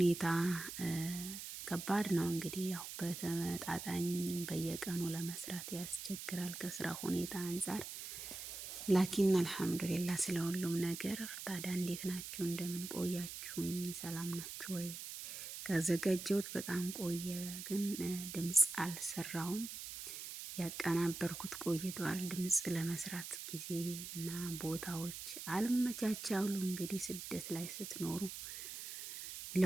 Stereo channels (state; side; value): noise; right; hiss, 8 dB below the sound